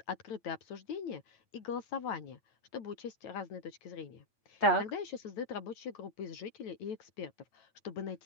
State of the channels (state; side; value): late; right; 9.1 ms